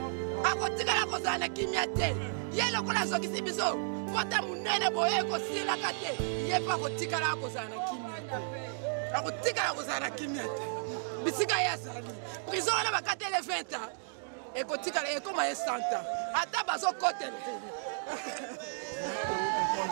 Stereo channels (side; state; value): left; silent; digital silence